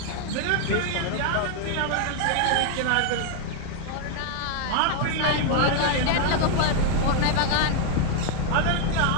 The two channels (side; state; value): both; different; correlation 0.00